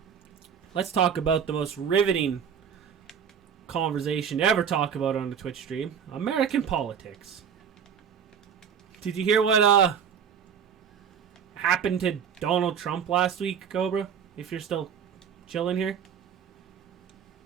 let's talk about the most riveting conversation to ever talk about on the Twitch stream. American politics. Did you hear what happened to Donald Trump last week, Cobra? If you're still chilling here.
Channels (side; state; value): left; quieter; 7.6 dB